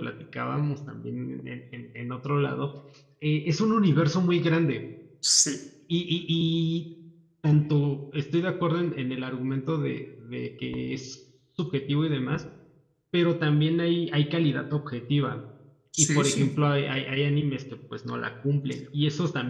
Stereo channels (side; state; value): both; identical; correlation 1.00